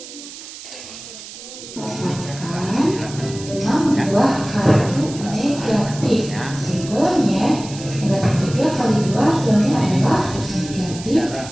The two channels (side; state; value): right; noise; hiss, 14 dB below the sound